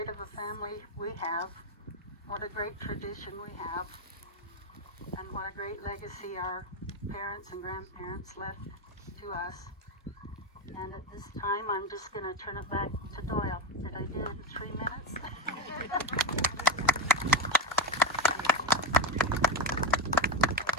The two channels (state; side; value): normal; both; correlation 0.13